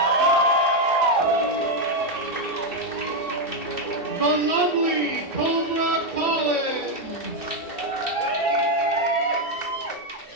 The lovely Cobra Collins.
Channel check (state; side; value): late; right; 2.6 ms